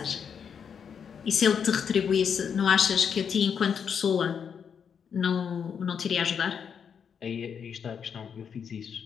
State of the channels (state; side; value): quieter; right; 7.2 dB